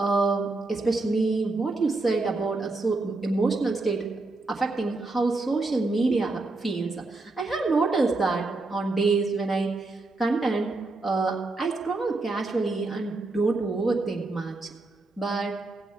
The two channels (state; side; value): quieter; left; 3.2 dB